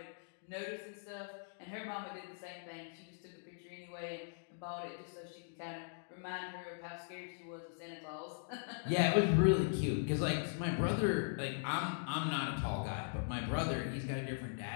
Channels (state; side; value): silent; right; digital silence